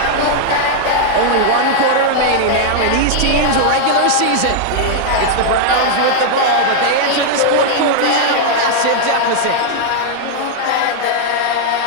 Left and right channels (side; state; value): both; different; correlation 0.00